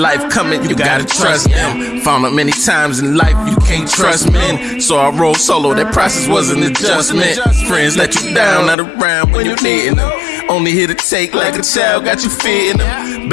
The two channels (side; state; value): right; drops out; at 8.8 s